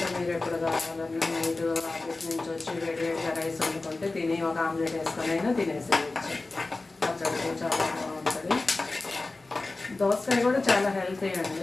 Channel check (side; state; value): right; quieter; 3.3 dB